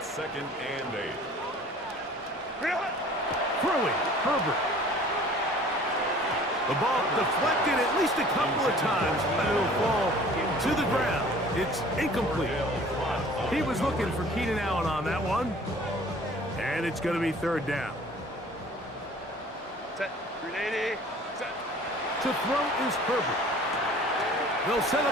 2nd and 8. Throwing, Herbert. The ball deflected at least a couple of times, but it'll fall to the ground. It's incomplete. He was looking for Keenan Allen on that one. And it's going to be 3rd down. Set. 380. Set. To throw is Herbert. They'll set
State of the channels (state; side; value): normal; both; correlation 0.49